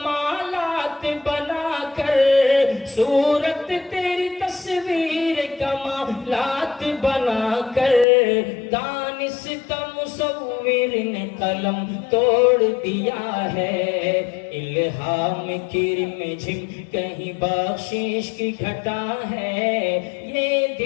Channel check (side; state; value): right; drops out; at 8.1 s